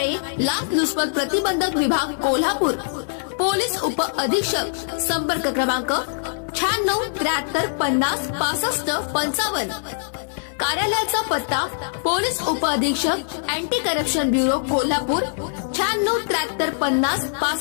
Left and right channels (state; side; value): silent; right; 64 dB below the other